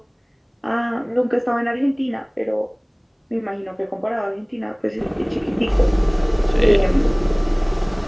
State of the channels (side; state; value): both; identical; correlation 1.00